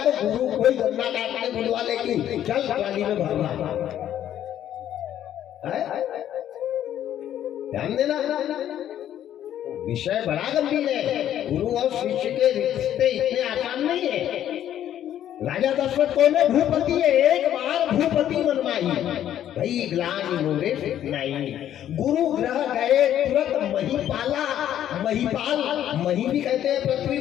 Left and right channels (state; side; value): quieter; right; 11.1 dB